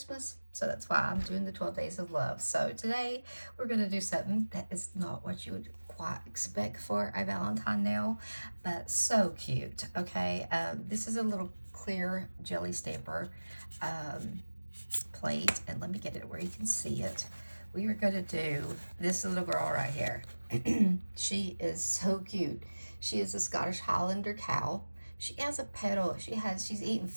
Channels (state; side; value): inverted; both; correlation -1.00